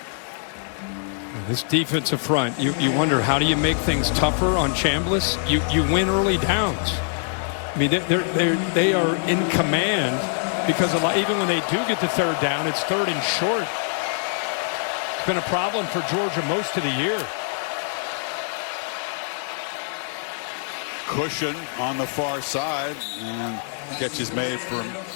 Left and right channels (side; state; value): right; silent; digital silence